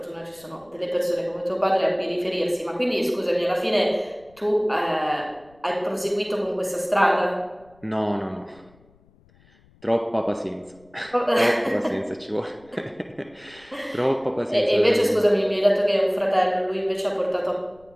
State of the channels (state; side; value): noise; left; rumble, 30 dB below the sound